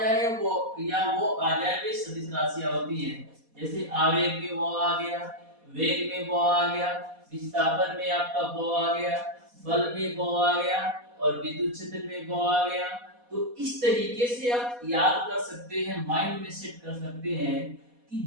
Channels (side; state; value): left; late; 4.2 ms